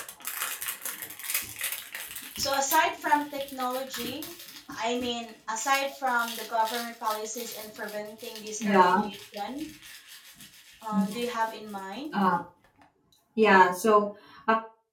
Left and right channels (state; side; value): identical; both; correlation 1.00